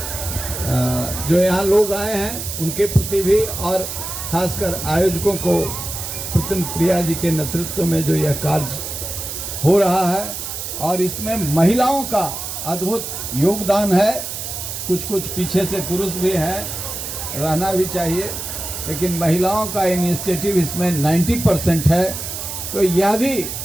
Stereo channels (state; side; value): noise; right; hiss, 6 dB below the sound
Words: जो यहाँ लोग आए हैं उनके प्रति भी, और खासकर आयोजकों को, पुतन प्रिया जी के नेतृत्व में जो यह कार्य हो रहा है, और इसमें महिलाओं का अद्भुत योगदान है। कुछ कुछ पीछे से पुरुष भी हैं, रहना भी चाहिए, लेकिन महिलाओं का इनिशिएटिव इसमें 90% है। तो यह भी